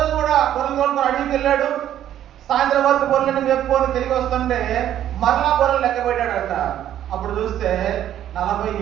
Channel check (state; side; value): quieter; left; 11.3 dB